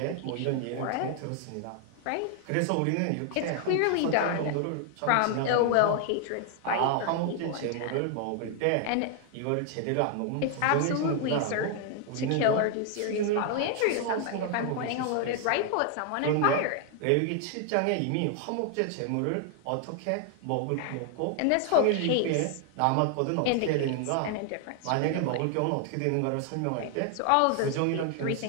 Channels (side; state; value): both; different; correlation 0.00